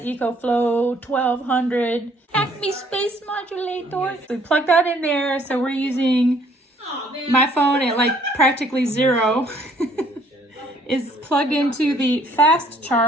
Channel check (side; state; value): both; normal; correlation 0.62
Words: EcoFlow 1200 Acme Space Modulator. We plugged that in there, so we're using my phone at like practically 0. Is plugged into the fast